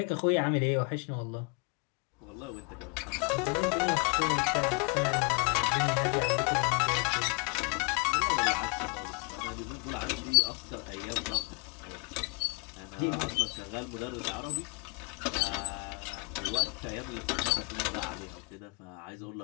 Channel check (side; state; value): right; quieter; 33.2 dB